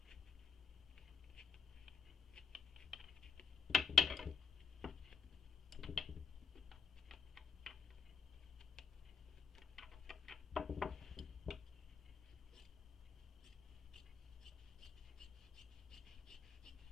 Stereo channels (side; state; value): right; quieter; 5.9 dB